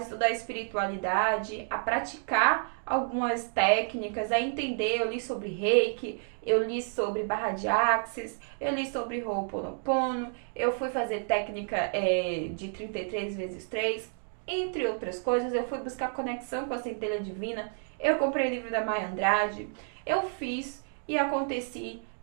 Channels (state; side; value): silent; left; 58 dB below the other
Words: espiritualidade, a praticar algumas técnicas, a entender. Eu li sobre Reiki, eu li sobre barra de Axis, eu li sobre Ho'oponopono, eu fui fazer técnica de 33 vezes 3, entre outras coisas. Eu fui buscar conexão com a centelha divina, eu comprei o livro da Maya Andrade, eu fiz e aconteci